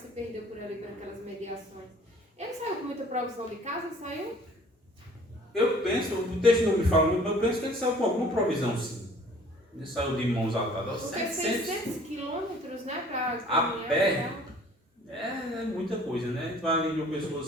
perdeu por ali naquelas mediações. Ele saiu com muita provisão de casa? Saiu? Eu penso, o texto não me fala muito, mas eu penso que ele saiu com alguma provisão, sim. Ele saiu de mãos atadas. Porque 600 quilômetros, né? A pé é muita coisa, né? A gente vai ali de uma pessoa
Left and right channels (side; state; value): both; normal; correlation 0.52